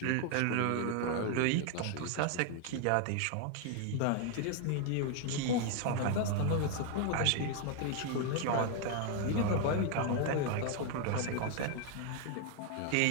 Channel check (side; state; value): both; different; correlation 0.00